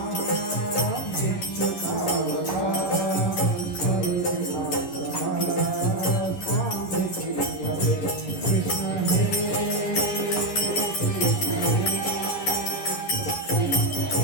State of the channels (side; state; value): right; late; 11 ms